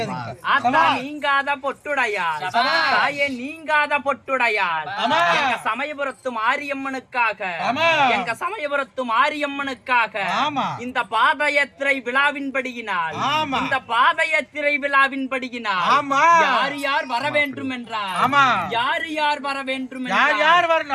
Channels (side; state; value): both; identical; correlation 1.00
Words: ஆத்தா சபாஷ். நீங்காத பொட்டுடையாள் சபாஷ். தாயே நீங்காத பொட்டுடையாள் ஆமா. எங்க சமயபுரத்து மாரியம்மனுக்காக ஆமா. எங்க சமயபுரத்து மாரியம்மனுக்காக ஆமா. இந்த பாதயாத்திரை விழாவின்படியினால் ஆமா. இந்த பாதயாத்திரை விழாவின்படியினால் ஆமா. யார் யார் வர வேண்டும் என்றார் ஆமா. யார் யார் வர வேண்டும் யார் என்றார் யார்